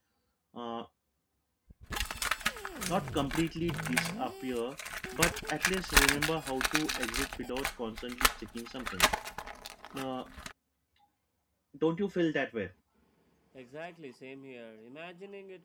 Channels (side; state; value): both; identical; correlation 1.00